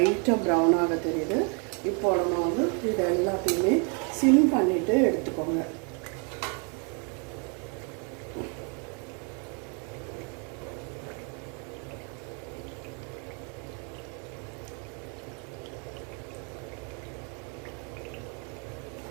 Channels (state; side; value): quieter; left; 36.8 dB